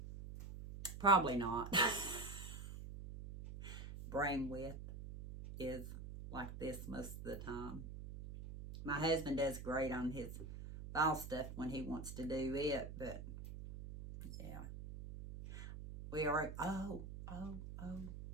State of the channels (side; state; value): right; noise; hum, 9 dB below the sound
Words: Probably not. Brain width is like this most of the time. My husband does great on his ball stuff when he wants to do it, but yeah. We are,